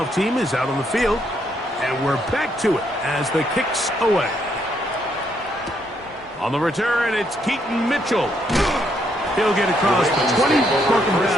team is out on the field, and we're back to it as the kick's away. On the return, it's Keaton Mitchell. He'll get across the 20, marking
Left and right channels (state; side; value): normal; both; correlation 0.74